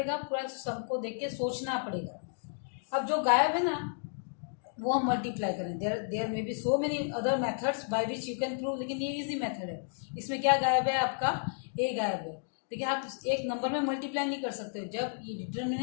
पूरा सबको देख के सोचना पड़ेगा. अब जो गायब है ना, वो हम मल्टीप्लाई करें. There may be so many other methods by which you can prove, लेकिन ये इजी मेथड है. इसमें क्या गायब है? आपका ए गायब है. लेकिन आप एक नंबर में मल्टीप्लाई नहीं कर सकते. जब ये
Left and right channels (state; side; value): silent; right; digital silence